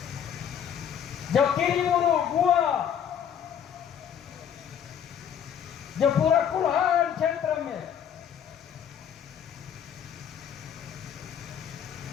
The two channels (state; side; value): quieter; right; 8.7 dB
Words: जो किरीमुरु गुआ जो पूरा कुल्हाड़ क्षेत्र में